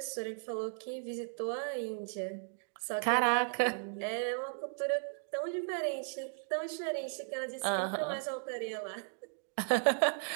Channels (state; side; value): silent; left; digital silence